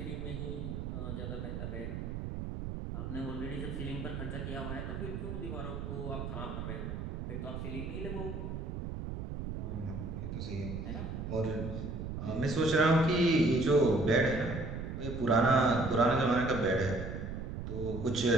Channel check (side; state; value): right; noise; rumble, 5 dB below the sound